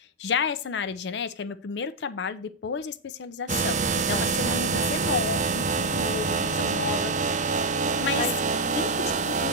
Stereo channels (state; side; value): normal; both; correlation 0.00